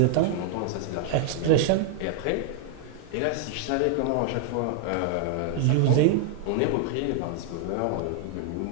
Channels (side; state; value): both; different; correlation 0.00